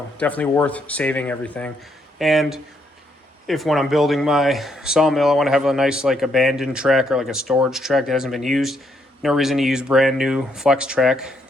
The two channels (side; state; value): both; normal; correlation 0.74